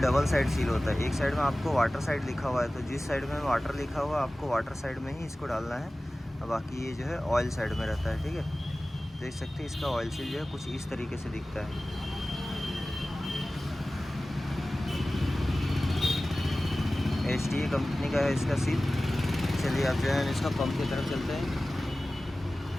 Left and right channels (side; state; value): both; normal; correlation 0.97